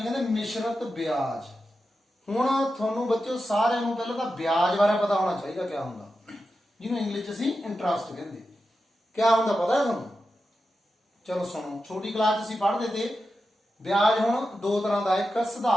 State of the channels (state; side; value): normal; both; correlation 0.90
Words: ਕਹਿੰਦੇ ਮਿਸ਼ਰਤ ਵਿਆਜ। ਹੁਣ ਤੁਹਾਨੂੰ ਬੱਚਿਓ ਸਾਰਿਆਂ ਨੂੰ ਪਹਿਲਾਂ ਤਾਂ ਵਿਆਜ ਬਾਰੇ ਪਤਾ ਹੋਣਾ ਚਾਹੀਦਾ ਕਿਆ ਹੁੰਦਾ, ਜਿਹਨੂੰ ਇੰਗਲਿਸ਼ 'ਚ ਅਸੀਂ ਇੰਟਰਸਟ ਕਹਿੰਦੇ। ਕਿਆ ਹੁੰਦਾ ਪਤਾ ਹੈ ਤੁਹਾਨੂੰ? ਚਲੋ ਸੁਣੋ, ਛੋਟੀ ਕਲਾਸ 'ਚ ਅਸੀਂ ਪੜ੍ਹਦੇ ਤੇ ਵਿਆਜ ਹੁਣ ਦੋ ਤਰ੍ਹਾਂ ਦਾ, ਇੱਕ